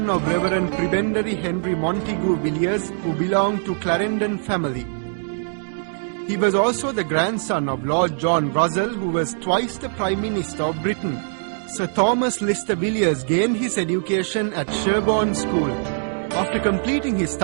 of Reverend Prebendary Henry Montegu Villiers, who belonged to Clarendon family. He was also the grandson of Lord John Russell, who was twice the Prime Minister of Britain. Sir Thomas Lister Villiers gained his education at Sherborne School. After completing his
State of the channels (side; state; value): left; silent; 64 dB below the other